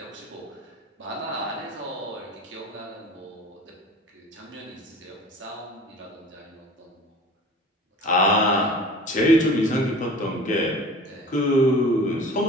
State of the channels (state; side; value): normal; both; correlation 0.41